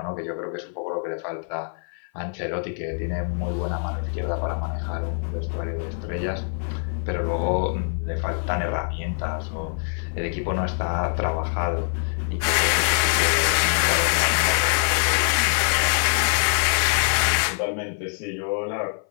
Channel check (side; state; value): right; silent; 57 dB below the other